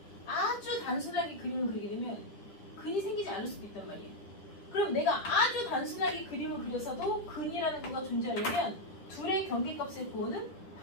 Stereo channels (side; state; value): right; late; 10 ms